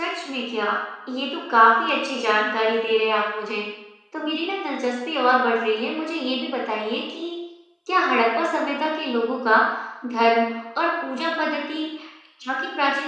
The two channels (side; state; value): both; identical; correlation 1.00